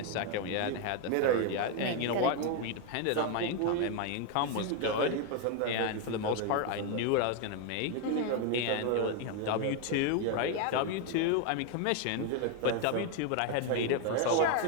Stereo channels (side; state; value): both; different; correlation 0.01